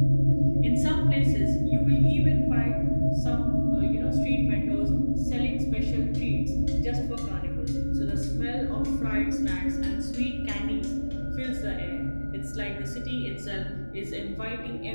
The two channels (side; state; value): both; inverted; correlation -1.00